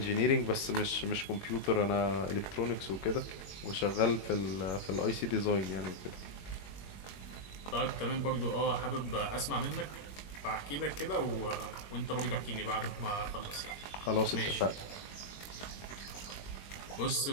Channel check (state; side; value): late; right; 21 ms